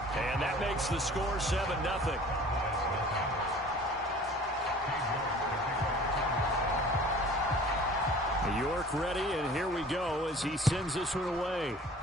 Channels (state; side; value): normal; both; correlation 0.46